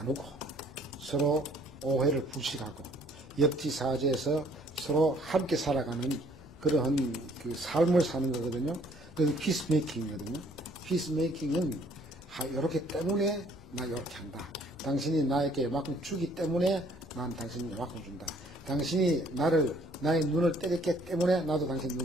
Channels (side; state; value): both; normal; correlation 0.60